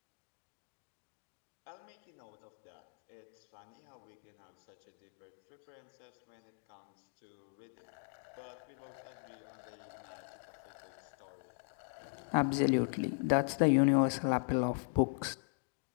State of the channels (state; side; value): silent; right; digital silence